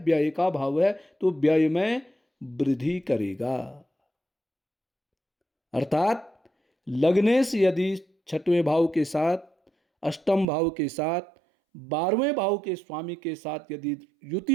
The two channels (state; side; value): drops out; left; at 10.5 s